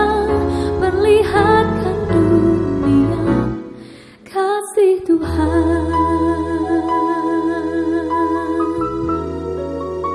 perlihatkan dunia kasih Tuhan.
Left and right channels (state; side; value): identical; both; correlation 1.00